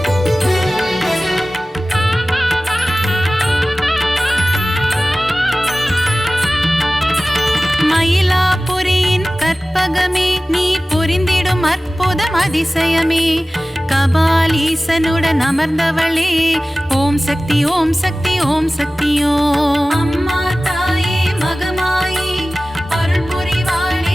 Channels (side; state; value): both; normal; correlation 0.97